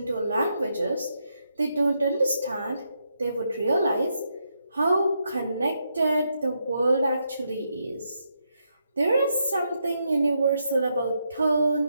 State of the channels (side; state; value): both; inverted; correlation -0.81